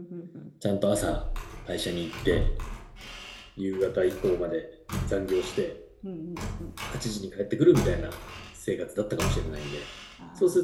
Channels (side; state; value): both; identical; correlation 1.00